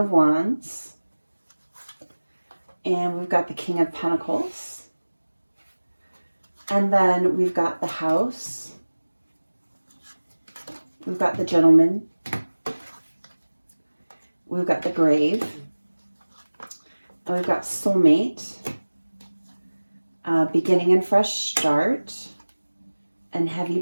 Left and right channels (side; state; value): both; inverted; correlation -1.00